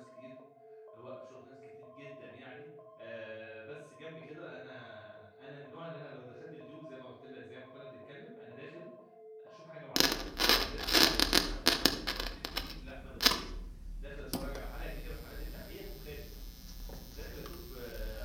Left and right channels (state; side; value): identical; both; correlation 1.00